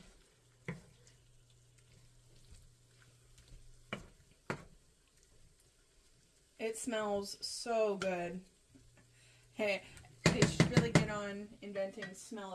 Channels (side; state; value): both; identical; correlation 1.00